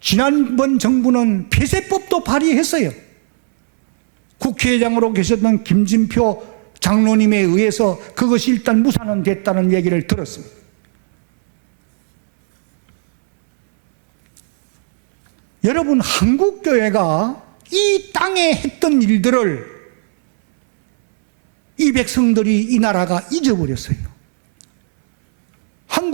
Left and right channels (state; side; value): silent; left; 70 dB below the other